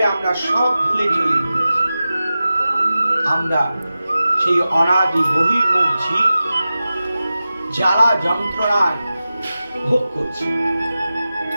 আমরা সব ভুলে চলে গেছি। আমরা সেই অনাদি বহির্মুখ জীব জ্বালা যন্ত্রণায় ভোগ করছি।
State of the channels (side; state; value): both; inverted; correlation -0.94